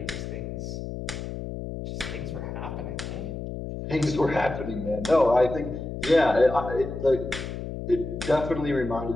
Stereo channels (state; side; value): noise; left; hum, 7 dB below the sound